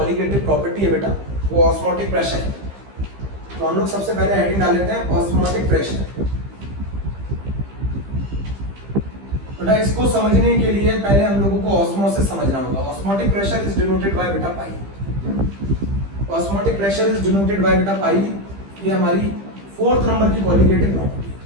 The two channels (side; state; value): left; late; 15 ms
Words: प्रॉपर्टी है बेटा वो ऑस्मोटिक प्रेशर है। तो हम लोग सबसे पहले हेडिंग डाल लेते हैं ऑस्मोटिक प्रेशर। बेटा इसको समझने के लिए पहले हम लोगों को ऑस्मोसिस समझना होगा। Osmotic pressure is denoted by बेटा pi. Osmotic pressure is denoted by बेटा पाई। ये हमारी 4th नंबर की कॉलिगेटिव प्रॉपर्टी।